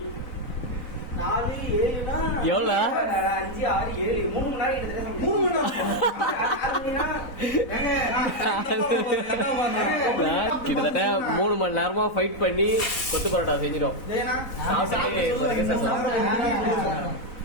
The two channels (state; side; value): late; right; 4.0 ms